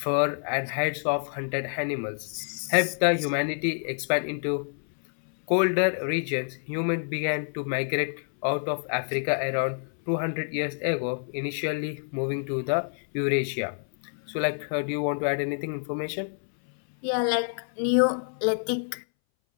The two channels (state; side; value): silent; right; 60 dB below the other